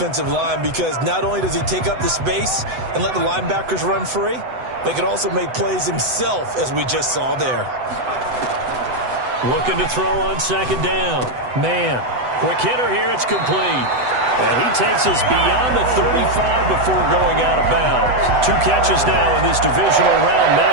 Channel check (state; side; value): late; left; 8.0 ms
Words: line, because not only does he take up the space and let the linebackers run free, but he can also make plays himself, as we just saw there. Looking to throw on 2nd down. Man, quick hitter here. It's complete. And he takes us beyond the 35 before going out of bounds. 2 catches now in this divisional round